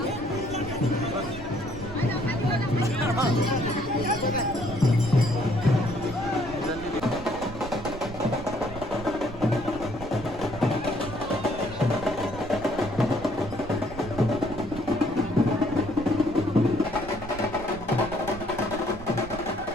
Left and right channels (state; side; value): noise; right; rumble, 12 dB below the sound